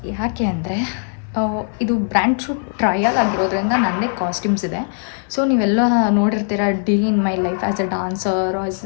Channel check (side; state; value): right; silent; digital silence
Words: ಯಾಕೆ ಅಂದರೆ ಇದು ಬ್ರ್ಯಾಂಡ್ ಶೂಟ್ ಟ್ರಯಲ್ ಆಗಿರೋದ್ರಿಂದ ನನ್ನದೇ ಕಾಸ್ಟ್ಯೂಮ್ಸ್ ಇದೆ. ಸೊ ನೀವೆಲ್ಲ ನೋಡಿರ್ತೀರ day in my life as a dancer,